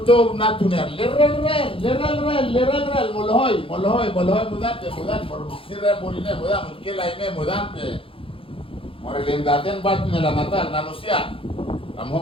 natuner lerel molhoy mudah bersirre moline mudah mungkin lainnya mudah morelendaten bat nih la mata manusia kamu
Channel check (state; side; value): late; right; 0.26 ms